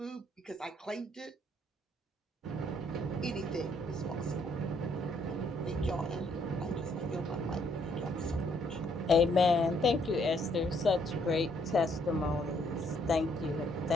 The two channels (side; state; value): both; normal; correlation 0.69